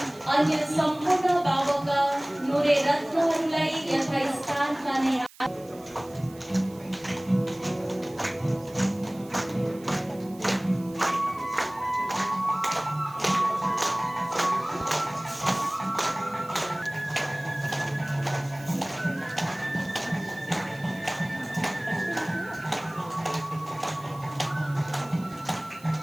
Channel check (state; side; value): noise; right; hiss, 23 dB below the sound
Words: अन्य सम्पूर्ण बाबाका नूरे रत्नहरूलाई यथास्थानमा नै